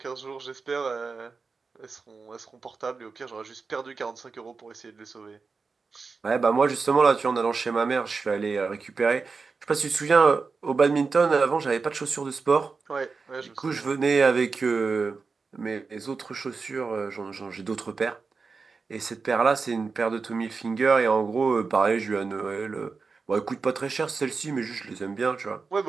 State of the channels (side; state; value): left; quieter; 4.6 dB